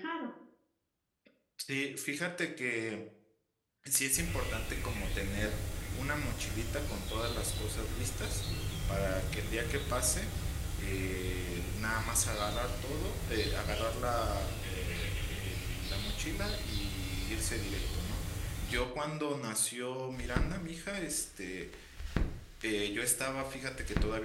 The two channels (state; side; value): identical; both; correlation 1.00